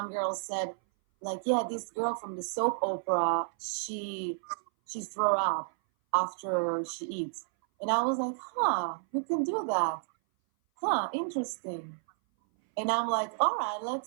said like, yeah, this girl from the soap opera, she throw up after she eats. And I was like, you can do that. Interesting. And I'm like, all right,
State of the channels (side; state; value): left; silent; 57 dB below the other